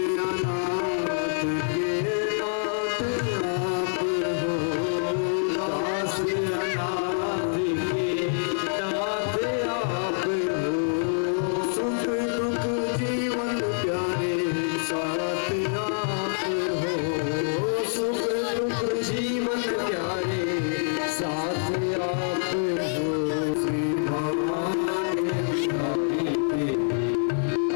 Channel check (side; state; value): right; silent; 61 dB below the other